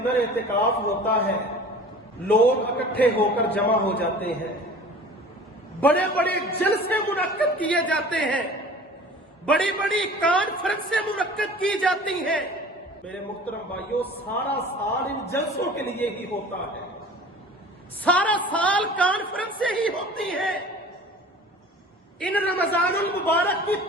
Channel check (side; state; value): both; normal; correlation 0.43